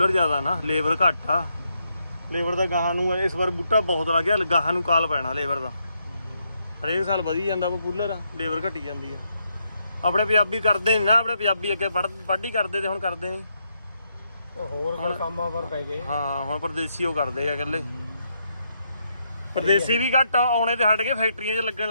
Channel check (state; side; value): inverted; both; correlation -0.79